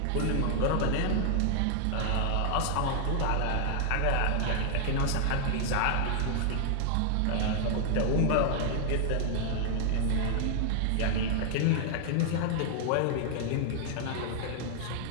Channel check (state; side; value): different; both; correlation 0.00